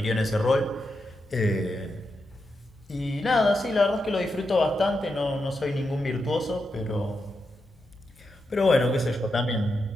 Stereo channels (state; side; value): normal; both; correlation 0.86